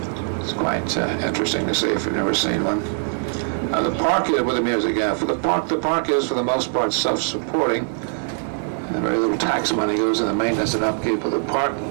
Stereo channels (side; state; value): left; silent; 63 dB below the other